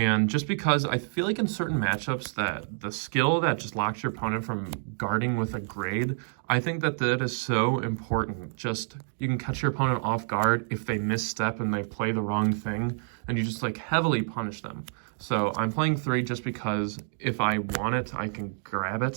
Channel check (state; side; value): silent; left; digital silence